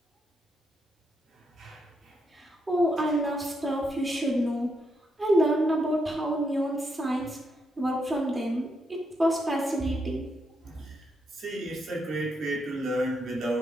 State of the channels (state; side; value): normal; both; correlation 0.80